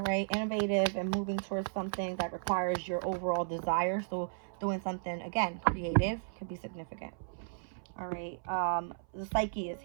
right, innovative, and moving towards something that requires your overall desire. So doing something, again, creative can be significant. All right. The psyche is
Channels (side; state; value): left; silent; 55 dB below the other